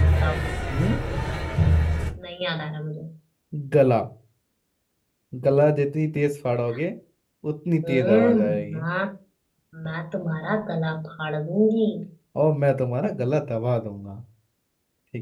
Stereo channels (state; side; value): identical; both; correlation 1.00